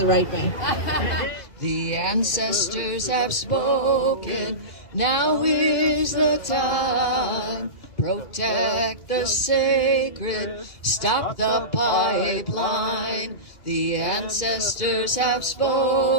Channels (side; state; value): right; late; 2.4 ms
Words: right bank. The ancestors have spoken. Now is the time. Protect the sacred. Stop the pipeline. The ancestors have